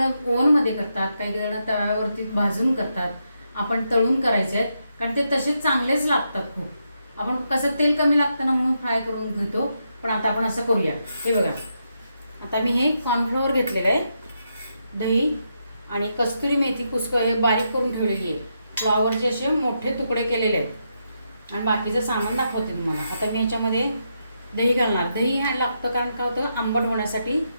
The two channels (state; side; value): inverted; both; correlation -0.82